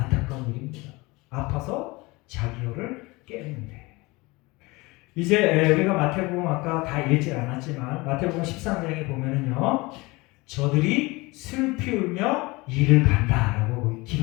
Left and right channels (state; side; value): quieter; right; 23.5 dB